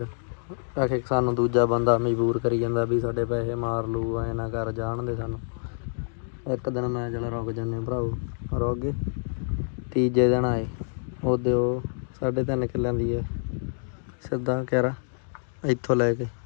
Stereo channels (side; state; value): right; silent; digital silence